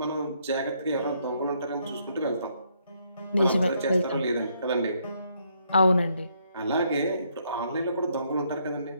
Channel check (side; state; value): both; inverted; correlation -0.72